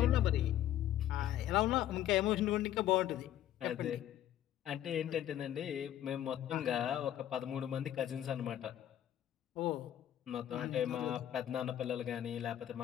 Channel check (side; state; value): right; quieter; 11.8 dB